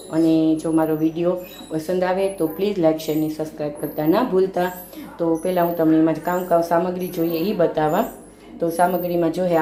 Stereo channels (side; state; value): both; identical; correlation 1.00